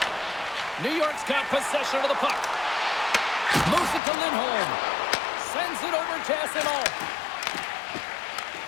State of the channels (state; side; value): drops out; right; at 4.0 s